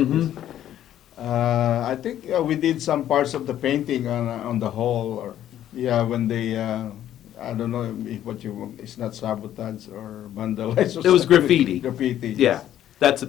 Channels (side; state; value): right; quieter; 11.6 dB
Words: I think we did some parts of the painting on the hull, or yeah, when they I don't know if what you it's not sabotage or vandalize. Or It was something. graffiti. Graffiti. Yeah, that's a